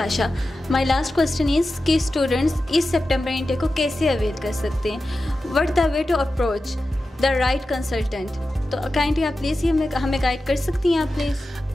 my last question is कि स्टूडेंट्स इस सितंबर इंटेक को कैसे अवेल कर सकते हैं? What the way to approach the right consultant? तो काइंडली आप प्लीज़ ये हमें गाइड कर सकती हैं आप प्लीज़?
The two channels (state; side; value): normal; both; correlation 0.93